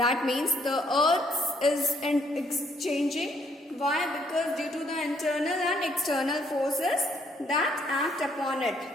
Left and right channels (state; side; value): normal; both; correlation 0.68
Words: means the earth is changing. Why? Because due to the internal and external forces that act upon it.